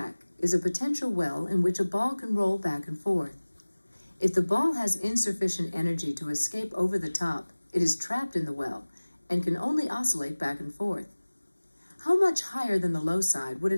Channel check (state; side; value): inverted; both; correlation -1.00